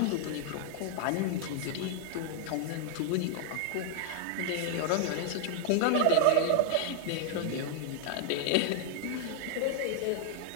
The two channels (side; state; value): both; different; correlation 0.00